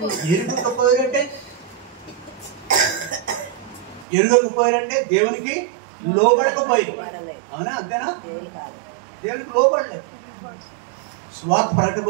ఎరగకపోయారంటే దేవునికి లోబడకపోయారు. అవునా? అంతేనా? దేవునికి లోబడలేదు. స్వార్థ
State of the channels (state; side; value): drops out; left; at 4.0 s